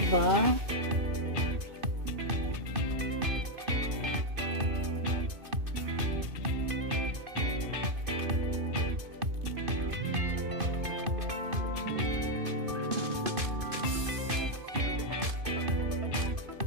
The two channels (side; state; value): left; late; 2.5 ms